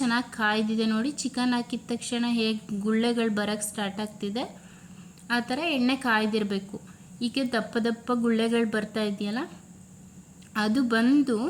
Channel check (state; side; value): identical; both; correlation 1.00